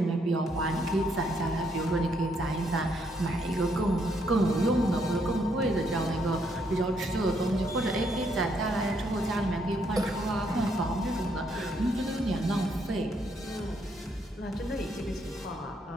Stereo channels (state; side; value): normal; both; correlation 0.73